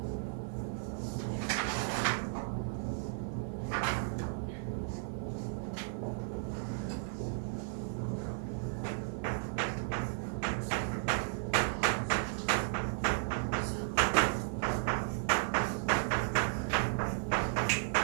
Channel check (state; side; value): silent; left; 55 dB below the other